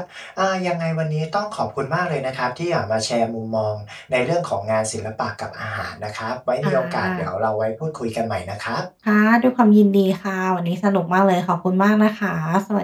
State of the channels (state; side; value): identical; both; correlation 1.00